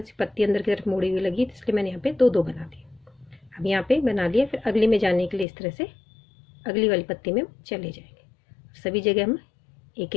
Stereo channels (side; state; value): right; drops out; at 5.5 s